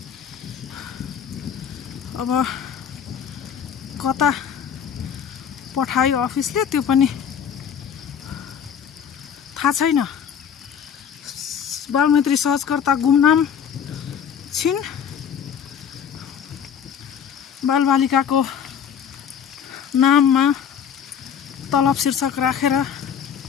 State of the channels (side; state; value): right; quieter; 7.9 dB